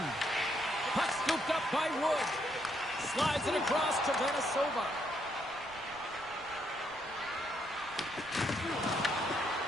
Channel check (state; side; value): noise; right; rumble, 22 dB below the sound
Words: Puck scooped up by Wood. Slides it across to Venesova.